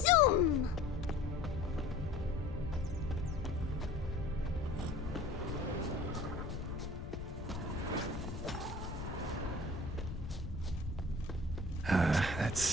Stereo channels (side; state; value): left; noise; rumble, 6 dB below the sound